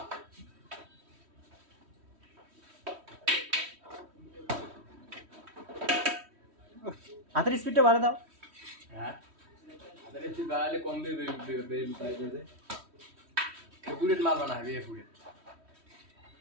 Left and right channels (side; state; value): left; late; 3.1 ms